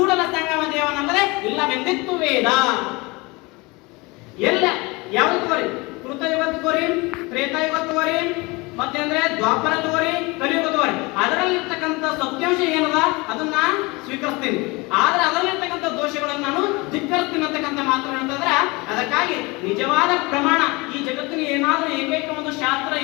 ಸಂಗಮ ದೇವನಲ್ಲದೆ ಇಲ್ಲವೆಂದಿತ್ತು ವೇದ. ಎಲ್ಲ ಯಾವ್ದು ತಗೋರಿ? ಕೃತಯುಗ ತಗೋರಿ, ತ್ರೇತಾಯುಗ ತಗೋರಿ, ಮತ್ತೆ ಅಂದ್ರೆ ದ್ವಾಪರ ತಗೋರಿ, ಕಲಿಯುಗ ತಗೋರಿ. ಅದರಲ್ಲಿರ್ತಕ್ಕಂಥ ಸತ್ಯಾಂಶ ಏನದ ಅದನ್ನ ಸ್ವೀಕರಿಸ್ತೀನಿ, ಆದ್ರೆ ಅದರಲ್ಲಿರ್ತಕ್ಕಂಥ ದೋಷಗಳನ್ನು ನಾನು ಧಿಕ್ಕರಿಸ್ತೀನಿ ಅಂತಕ್ಕಂಥ ಮಾತು ಅಂತಂದ್ರೆ, ಅದಕ್ಕಾಗಿ ನಿಜವಾದ ಪ್ರಮಾಣ ಈ ಜಗತ್ತಿನ ಏನಾದ್ರೂ ಏಕೈಕ ಒಂದು ಶಾಸ್ತ್ರ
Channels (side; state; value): right; quieter; 25.0 dB